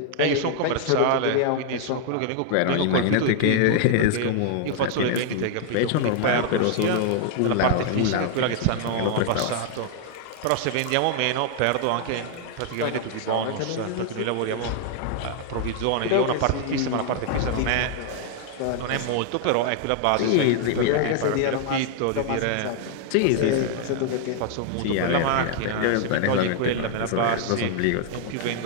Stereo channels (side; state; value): both; different; correlation 0.00